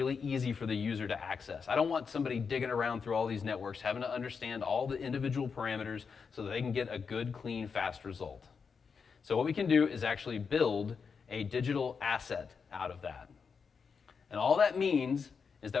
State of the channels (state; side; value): quieter; right; 5.7 dB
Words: easy for the user to access. I don't want somebody digging around through all these networks, having to understand all the individual parameters so that they can get a good, clean, fast result. So what we can do is actually build a digital asset out of that. And all that means is